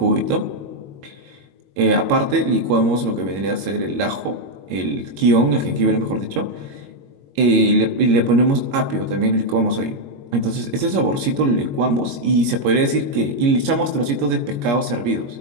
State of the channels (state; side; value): late; left; 21 ms